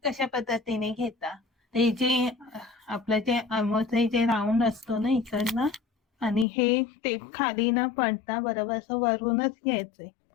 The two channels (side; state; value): right; drops out; at 6.5 s